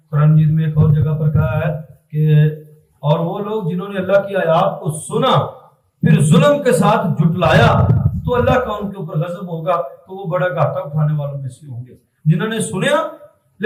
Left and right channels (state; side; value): identical; both; correlation 1.00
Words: قرآن مجید میں ایک اور جگہ پر کہا ہے کہ اور وہ لوگ جنہوں نے اللہ کی آیات کو سنا پھر ظلم کے ساتھ جھٹلایا تو اللہ کا ان کے اوپر غضب ہوگا، تو وہ بڑا گھاٹا اٹھانے والوں میں سے ہوں گے. جنہوں نے سنیا